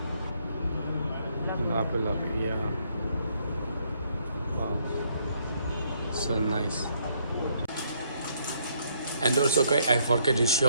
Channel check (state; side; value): inverted; both; correlation -0.70